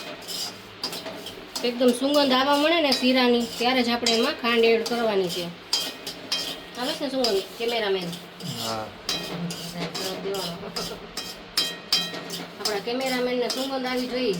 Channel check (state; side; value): identical; both; correlation 1.00